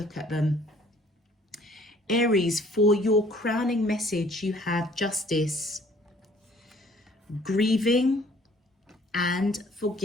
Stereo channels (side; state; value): both; normal; correlation 0.58